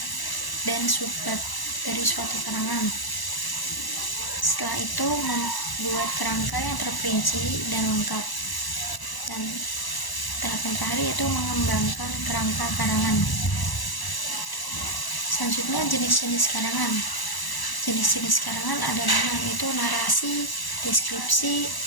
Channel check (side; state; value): right; late; 1.0 ms